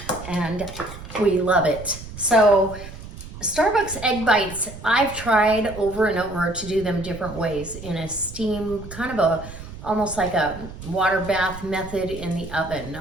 and we love it. So Starbucks egg bites, I've tried over and over to do them different ways in a steam, kind of almost like a water bath method in the oven.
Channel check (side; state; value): right; noise; rumble, 13 dB below the sound